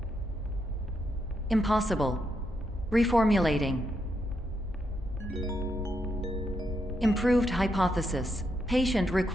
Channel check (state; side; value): normal; both; correlation 0.81